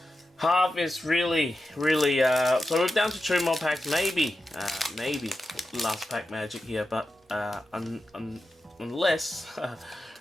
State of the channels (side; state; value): both; normal; correlation 0.91